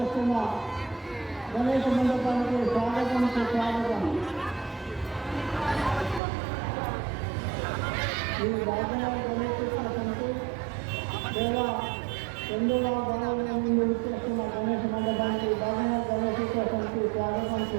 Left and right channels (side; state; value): left; drops out; at 6.2 s